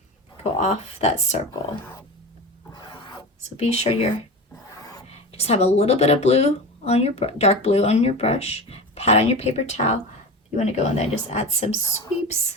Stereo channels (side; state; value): both; normal; correlation 0.28